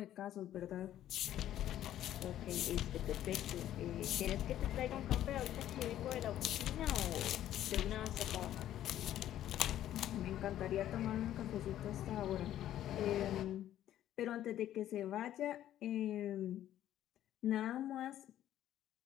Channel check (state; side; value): quieter; right; 12.2 dB